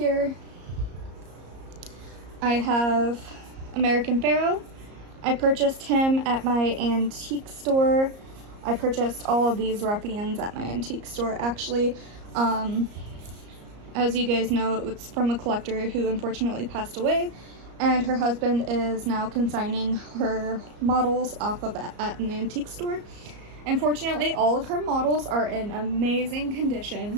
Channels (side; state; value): left; late; 34 ms